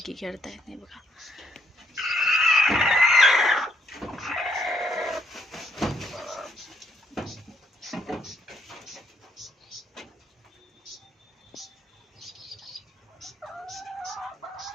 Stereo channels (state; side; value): normal; both; correlation 0.71